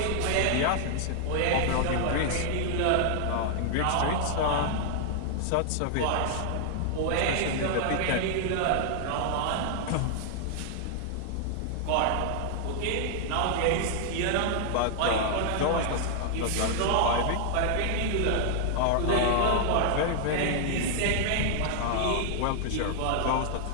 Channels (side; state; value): both; different; correlation -0.01